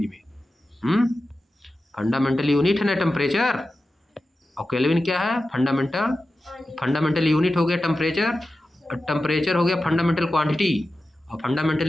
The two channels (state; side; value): normal; both; correlation 0.93